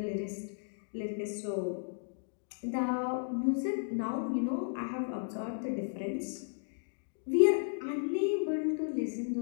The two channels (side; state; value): right; silent; digital silence